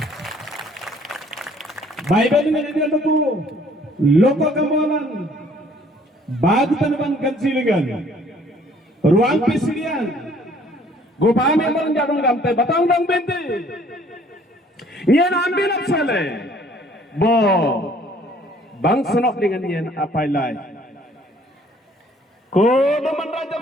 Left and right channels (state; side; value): normal; both; correlation 0.58